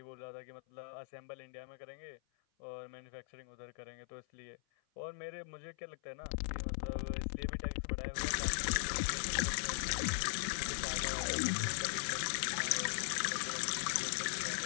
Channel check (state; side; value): silent; right; 51 dB below the other